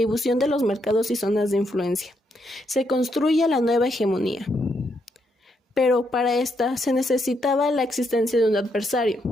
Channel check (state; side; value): normal; both; correlation 0.77